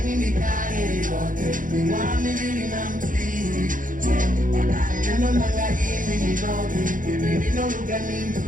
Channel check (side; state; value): left; late; 0.39 ms